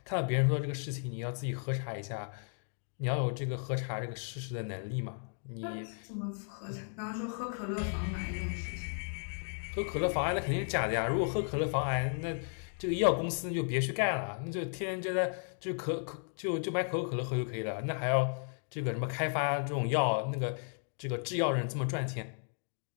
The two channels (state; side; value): silent; right; 55 dB below the other